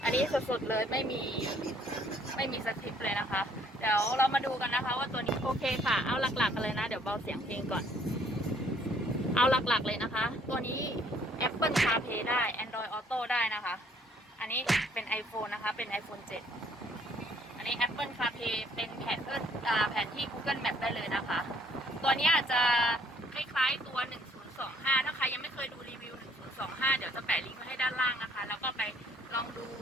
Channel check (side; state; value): both; normal; correlation 0.63